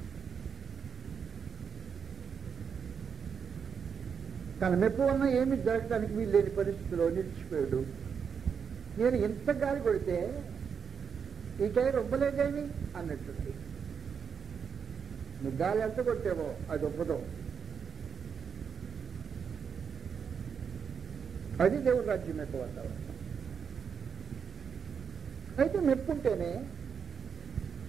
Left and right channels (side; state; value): left; quieter; 6.6 dB